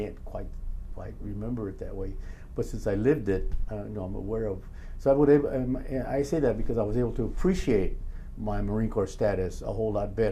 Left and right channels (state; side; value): identical; both; correlation 1.00